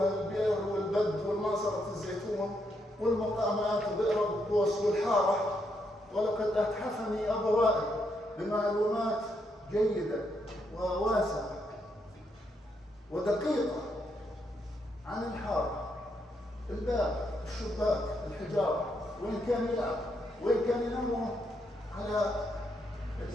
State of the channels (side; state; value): both; normal; correlation 0.78